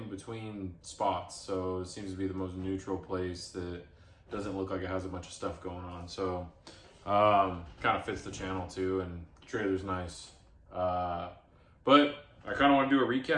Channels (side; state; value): both; identical; correlation 1.00